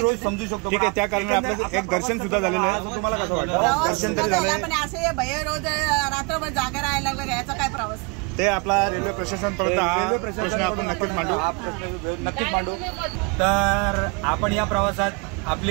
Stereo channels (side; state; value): left; quieter; 31.0 dB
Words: समजू शकतो. ठीक आहे, त्या कारणाने आपलं एक दर्शन सुद्धा झालेलं आहे. तुम्हाला कसं वाटतं? दर्शन तरी झालं, पण असे भय रोज रात्रभर जागा राहायला लागलं, याचा काय प्रवास? ते आपला रेल्वे प्रशासनपर्यंत हा प्रश्न आपण नक्कीच मांडू. नक्कीच मांडू. तर आपण या प्रवासात